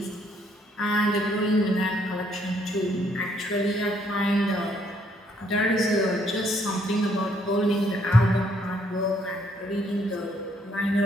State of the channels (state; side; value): normal; both; correlation 0.68